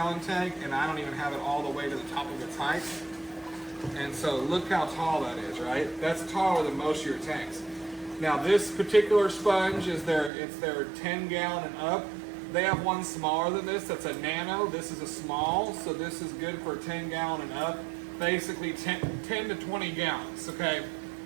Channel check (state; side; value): drops out; left; at 10.3 s